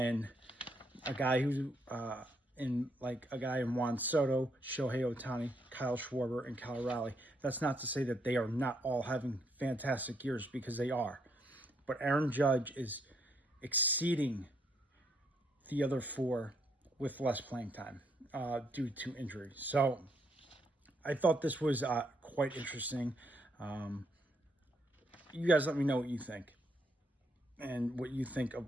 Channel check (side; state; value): both; normal; correlation 0.74